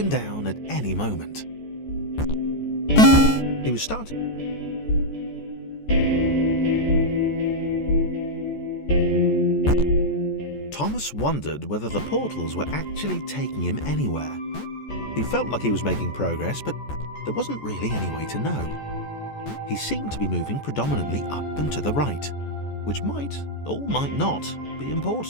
down at any moment. He was starting. Thomas wondered whether the portals were actually taking him anywhere. He felt like he was making progress, but there wasn't really any way to know. He seemed to be moving predominantly up and to the right, which might, or might not, be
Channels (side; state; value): right; late; 14 ms